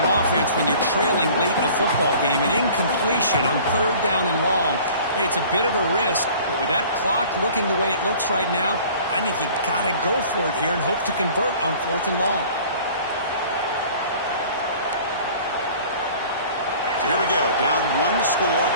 offense when you're trailing late in a football game. An incompletion on third down and long. Hey, it's a bit of a risk, but with that clock looking the way it looks right now, I think you got to go for it here and hope to convert on fourth and long. So here we go. Down one score.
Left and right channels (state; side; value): inverted; both; correlation -0.48